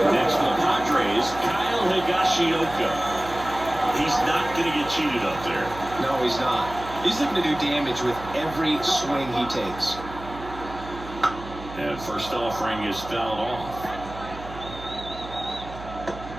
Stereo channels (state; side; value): noise; right; hum, 13 dB below the sound